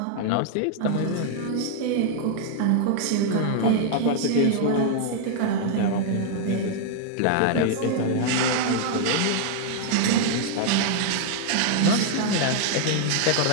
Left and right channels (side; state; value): both; different; correlation 0.00